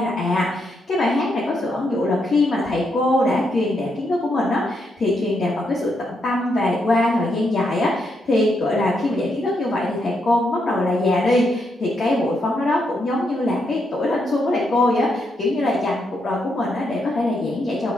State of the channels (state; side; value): normal; both; correlation 0.79